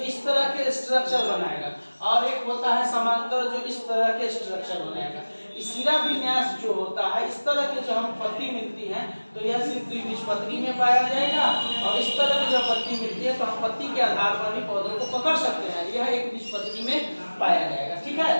इस तरह के स्ट्रक्चर बनाएगा, और एक होता है समांतर जो इस तरह के स्ट्रक्चर बनाएगा। सीरा विन्यास जो होता है, इस तरह के जो हम पत्ती मिलती है तो यह सिर्फ द्विबीजपत्री में पाया जाएगा। और इस तरह की जो पत्ती मिलती है तो हम पत्ती के आधार पर भी पौधों को पकड़ सकते हैं, यह एक बीजपत्री में पाया जाएगा। ठीक है,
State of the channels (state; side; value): inverted; both; correlation -1.00